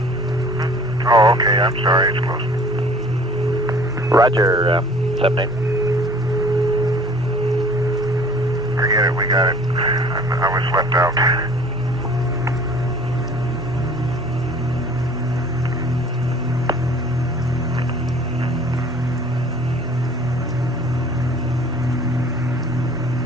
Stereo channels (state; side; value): normal; both; correlation 0.50